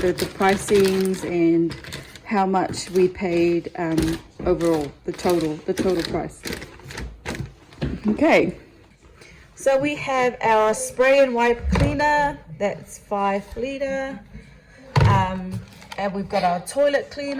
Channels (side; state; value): both; identical; correlation 1.00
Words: pricings and how much we paid overall, the total price. Okay, so we have our spray and wipe cleaner, that's 5 liter, and we've got our toilet